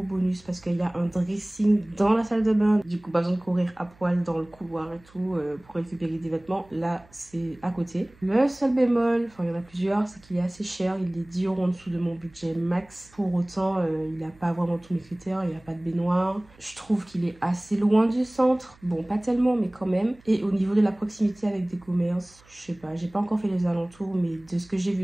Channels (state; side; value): noise; right; hum, 28 dB below the sound